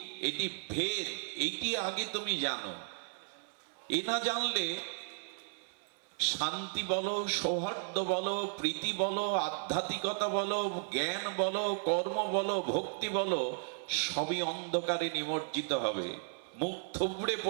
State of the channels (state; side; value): silent; left; 55 dB below the other